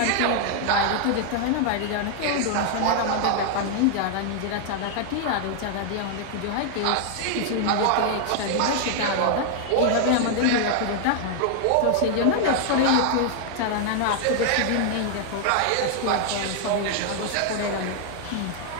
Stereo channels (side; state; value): both; different; correlation 0.00